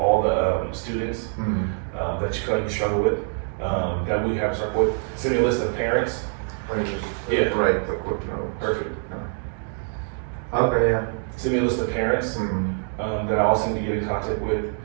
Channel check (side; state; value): left; silent; 56 dB below the other